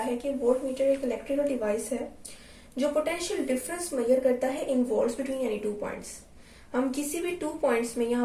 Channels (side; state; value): both; identical; correlation 1.00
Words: है। कि वोल्ट मीटर एक इलेक्ट्रिकल डिवाइस है जो पोटेंशियल डिफरेंस मेजर करता है in volts between any two points. हम किसी भी टू पॉइंट्स में, यहाँ